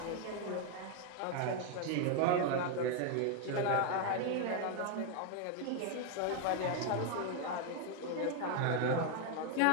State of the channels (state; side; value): different; both; correlation 0.01